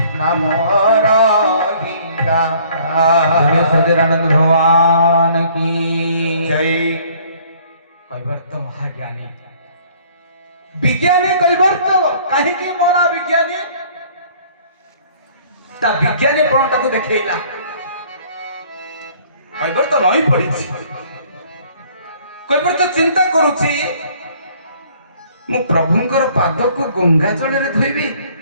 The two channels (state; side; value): inverted; both; correlation -0.57